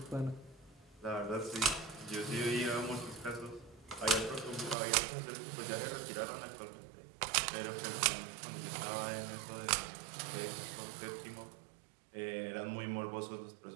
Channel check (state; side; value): drops out; left; at 4.8 s